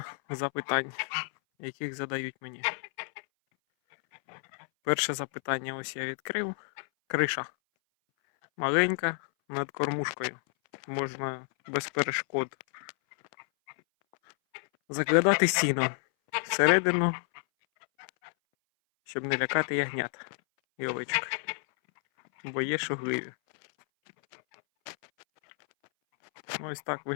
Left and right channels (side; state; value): right; silent; 58 dB below the other